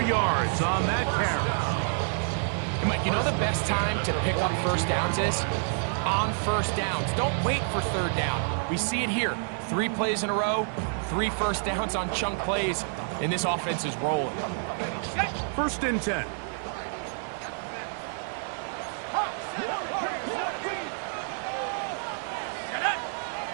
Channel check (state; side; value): silent; left; 59 dB below the other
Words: yards on that carry. And Mike, you know the best time to pick up first downs is? On first downs. Don't wait for third down. We see it here. 3 plays in a row, 3 first downs on chunk plays, and this offense is rolling. First and 10.